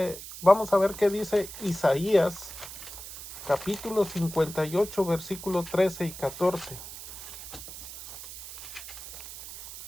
vamos a ver qué dice Isaías, capítulo 58, versículos 13 y 14.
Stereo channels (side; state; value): right; noise; hiss, 12 dB below the sound